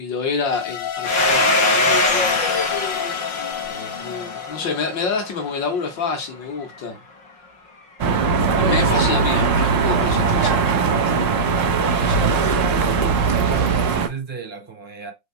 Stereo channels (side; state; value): right; late; 5.6 ms